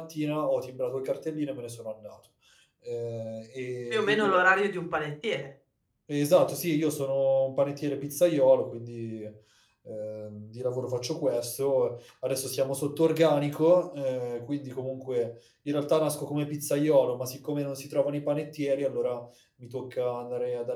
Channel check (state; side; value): identical; both; correlation 1.00